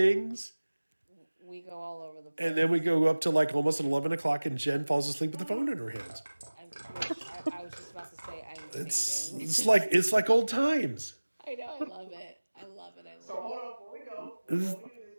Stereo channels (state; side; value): inverted; both; correlation -1.00